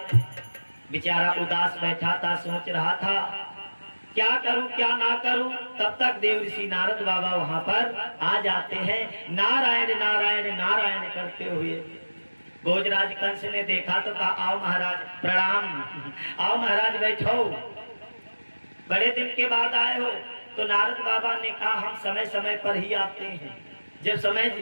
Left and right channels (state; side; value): inverted; both; correlation -1.00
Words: बेचारा उदास बैठा था, सोच रहा था क्या करूं क्या ना करूं। तब तक देव ऋषि नारद बाबा वहां पर आ जाते हैं, नारायण नारायण नारायण करते हुए। भोजराज कंस ने देखा तो कहा आओ महाराज प्रणाम, आओ महाराज बैठो, बड़े दिन के बाद आए हो। तो नारद बाबा ने कहा हम समय समय पर ही आते हैं, जब समय